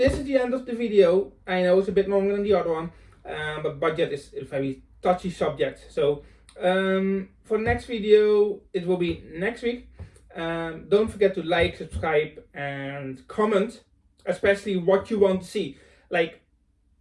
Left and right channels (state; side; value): identical; both; correlation 1.00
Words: is the end of the video. I know it's a bit longer than the other one, but budget is a very touchy subject. So for next video, it will be next week. Don't forget to like, subscribe and comment, especially what you want to see. Like,